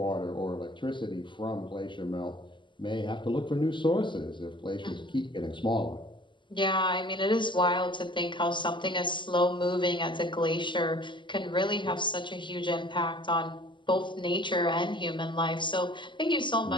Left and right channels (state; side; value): late; right; 0.23 ms